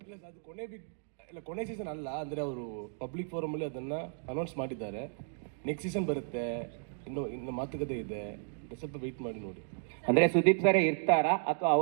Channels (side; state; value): left; silent; digital silence